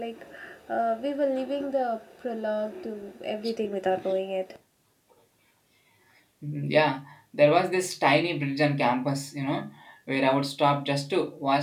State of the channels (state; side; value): identical; both; correlation 1.00